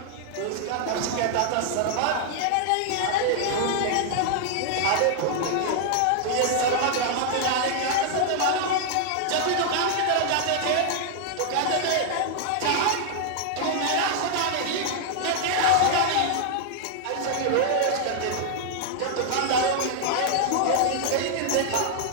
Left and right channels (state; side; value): different; both; correlation 0.00